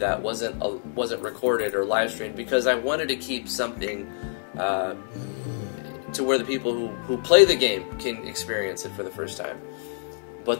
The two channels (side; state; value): right; silent; digital silence